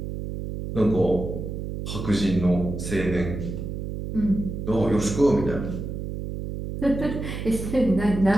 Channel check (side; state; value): right; noise; hum, 6 dB below the sound